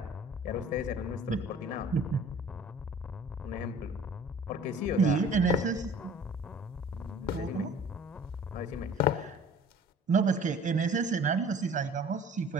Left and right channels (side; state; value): both; normal; correlation 0.48